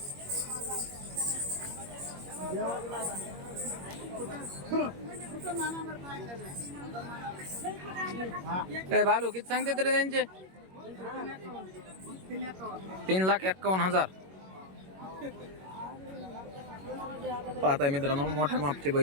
ए बालू किती सांगते तरी त्यांचे? 3,51,000. पाहताय मित्रांनो मोठ्या मापचे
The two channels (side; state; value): left; late; 21 ms